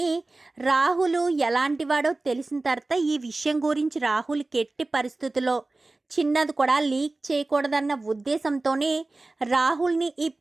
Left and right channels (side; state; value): left; quieter; 3.1 dB